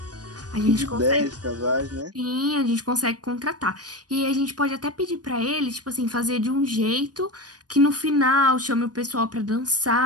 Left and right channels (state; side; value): late; left; 0.69 ms